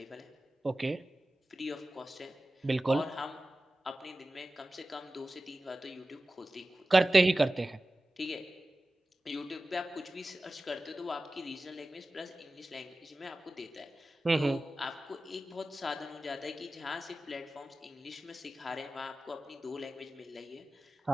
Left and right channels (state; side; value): normal; both; correlation 0.95